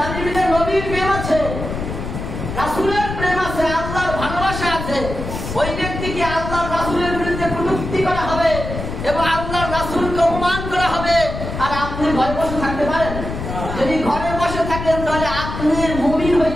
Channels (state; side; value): noise; left; rumble, 6 dB below the sound